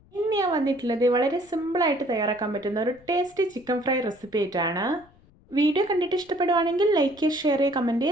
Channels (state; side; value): noise; left; rumble, 29 dB below the sound